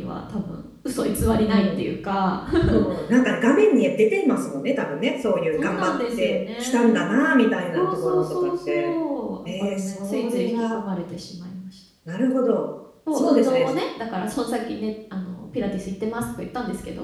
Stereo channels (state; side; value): identical; both; correlation 1.00